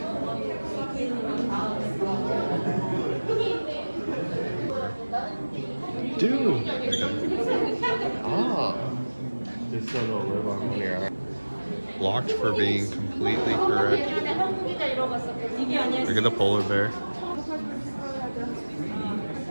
Dude! Oh! Just so they'll live on one ear. Blocked for being completely correct. Look at the polar bear.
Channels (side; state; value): both; inverted; correlation -1.00